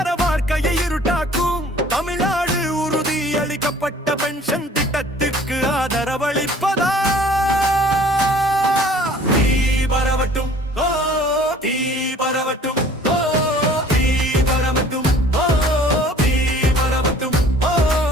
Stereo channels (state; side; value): normal; both; correlation 0.51